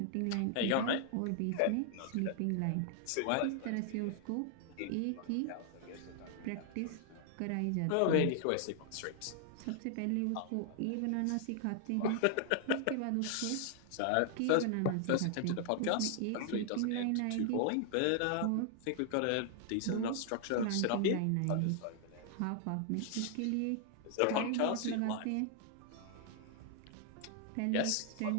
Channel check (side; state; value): both; different; correlation 0.00